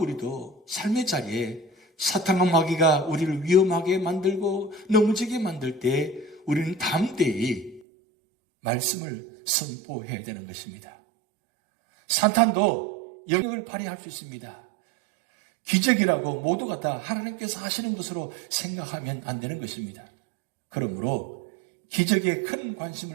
삶의 자리에 사탄과 마귀가 우리를 위험하게 만들고 넘어지게 만들 때 우리는 담대히 말씀을 선포해야 되는 것입니다. 사탄도 영역을 발휘할 수 있습니다. 기적이라고 모두가 다 하나님께서 하시는 것으로 생각하면 안 되는 것입니다. 그러므로 기적에 큰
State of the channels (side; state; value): left; drops out; at 7.8 s